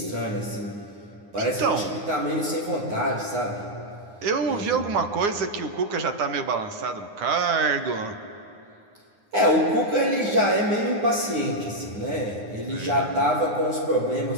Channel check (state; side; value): late; left; 9.7 ms